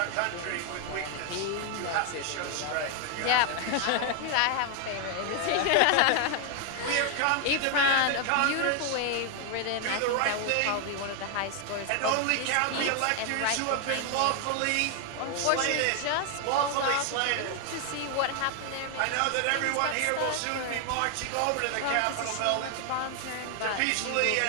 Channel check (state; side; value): different; both; correlation 0.00